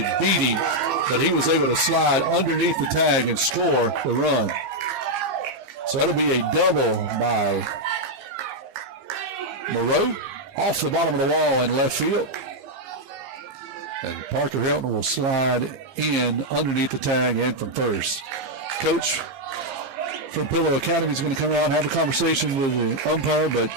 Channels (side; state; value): left; late; 15 ms